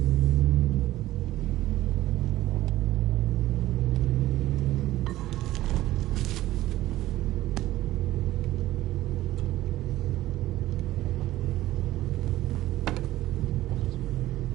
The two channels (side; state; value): left; quieter; 15.5 dB